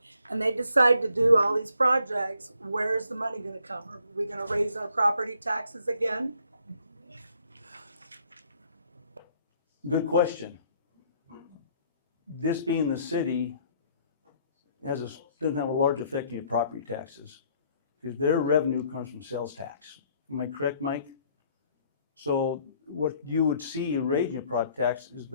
and they decide to do all these projects, where's the money gonna come? Are we gonna raise our property taxes again? Good question. This being the city doesn't have a large effect on your property taxes, because their revenue comes from sales tax. Am I correct, Mike? So what you would see in raising your property tax is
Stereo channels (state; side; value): inverted; both; correlation -0.65